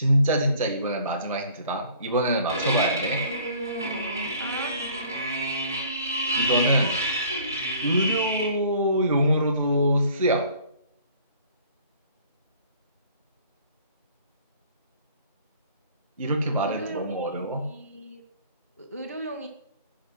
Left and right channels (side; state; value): both; inverted; correlation -0.53